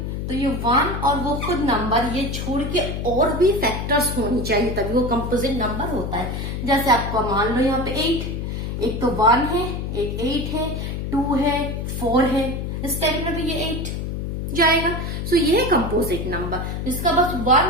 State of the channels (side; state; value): left; noise; hum, 4 dB below the sound